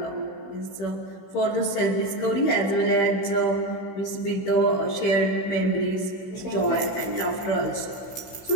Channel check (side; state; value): right; late; 16 ms